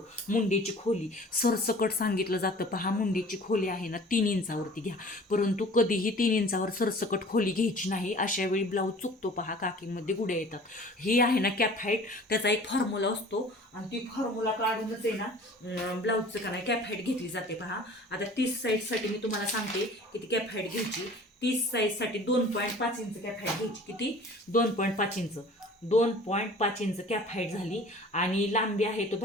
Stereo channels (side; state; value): both; normal; correlation 0.47